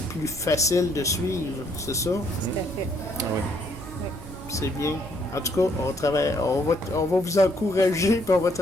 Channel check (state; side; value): normal; both; correlation 0.68